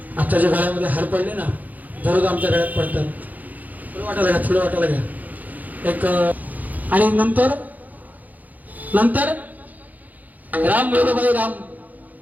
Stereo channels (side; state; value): left; late; 0.080 ms